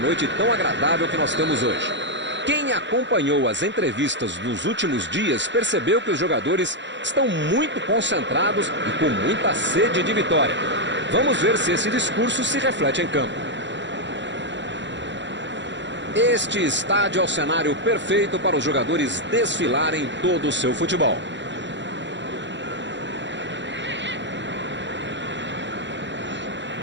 tão agradável que nós temos hoje. Quem acompanhou as entrevistas dos últimos dias percebeu que os jogadores estão muito concentrados e com muita sede de vitória. Vamos ver se esse discurso se reflete em campo. Este estádio é o cenário perfeito para os jogadores desfilarem todo o seu futebol.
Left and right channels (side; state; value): left; late; 0.53 ms